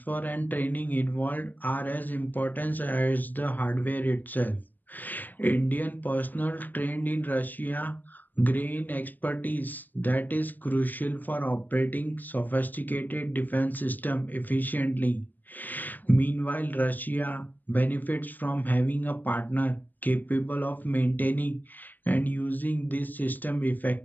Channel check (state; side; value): late; right; 0.085 ms